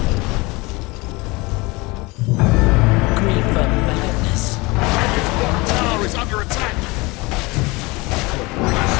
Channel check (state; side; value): quieter; right; 24.3 dB